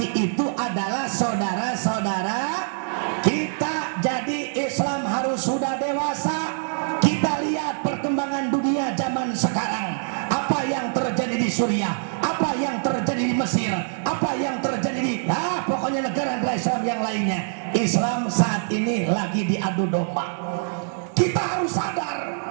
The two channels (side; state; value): left; silent; digital silence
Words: itu adalah saudara-saudara kita. Jadi Islam harus sudah dewasa. Kita lihat perkembangan dunia zaman sekarang. Apa yang terjadi di Suriah, apa yang terjadi di Mesir, apa yang terjadi di pokoknya negara-negara Islam yang lainnya. Islam saat ini lagi diadu domba. Kita harus sadar,